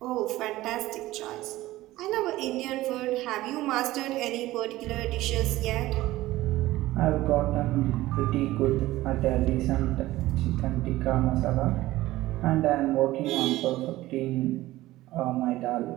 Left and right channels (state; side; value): quieter; left; 16.9 dB